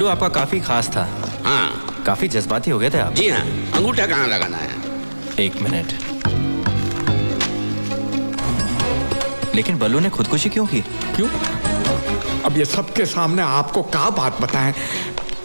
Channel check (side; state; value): both; inverted; correlation -1.00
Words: आपका काफी खास था। हाँ, काफी जज्बाती हो गए थे आप। जी हाँ। अंगूठा कहाँ लगाना है? 1 मिनट। लेकिन बल्लू ने खुदकुशी क्यों की? क्यों? अब ये सबके सामने आपको क्या बात बताएं?